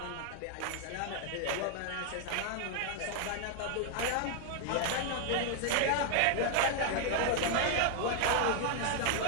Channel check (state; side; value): different; both; correlation 0.00